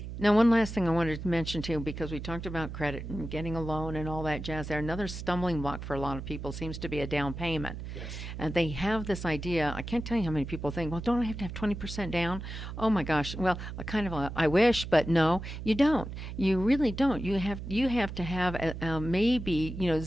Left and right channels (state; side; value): noise; right; hum, 8 dB below the sound